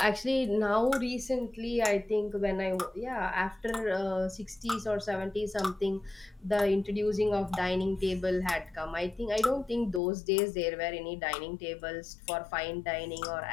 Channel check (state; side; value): drops out; right; at 10.0 s